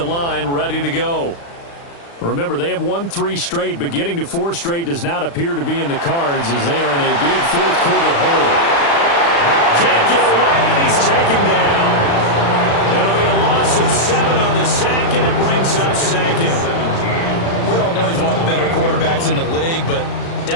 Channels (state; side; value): late; right; 35 ms